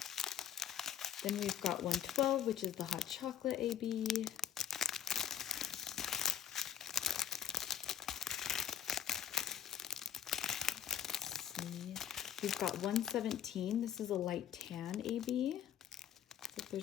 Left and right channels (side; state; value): right; quieter; 9.7 dB